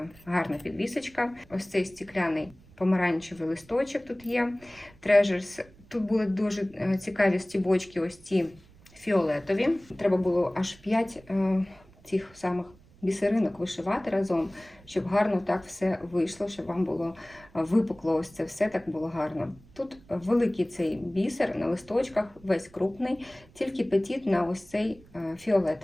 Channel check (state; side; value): noise; right; rumble, 26 dB below the sound